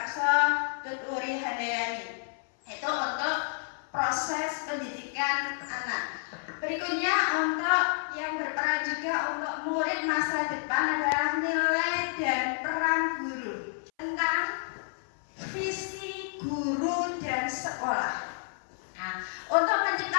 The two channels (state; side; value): silent; right; 58 dB below the other